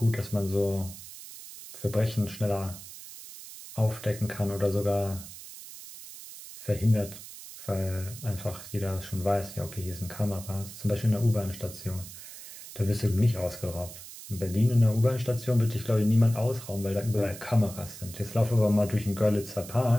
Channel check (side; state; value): right; noise; hiss, 14 dB below the sound